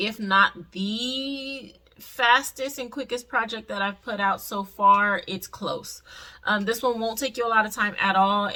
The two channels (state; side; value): identical; both; correlation 1.00